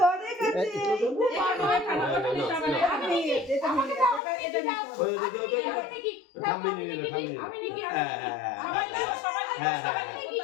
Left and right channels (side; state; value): right; drops out; at 4.2 s